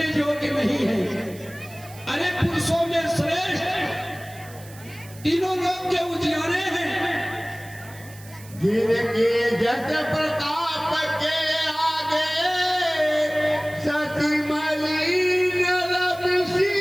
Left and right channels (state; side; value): noise; right; hiss, 20 dB below the sound